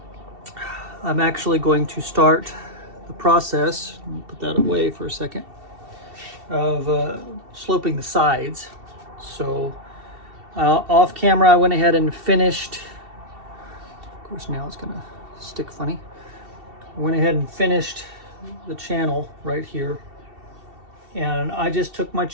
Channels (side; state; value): left; late; 2.7 ms